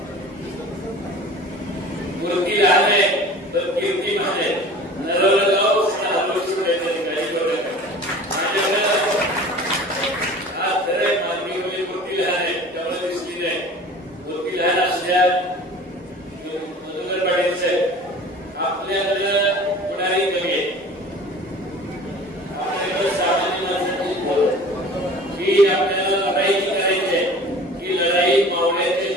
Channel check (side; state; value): both; normal; correlation 0.42